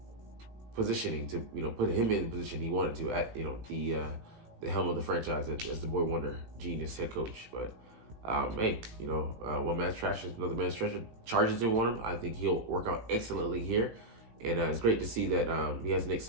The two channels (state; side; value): late; left; 18 ms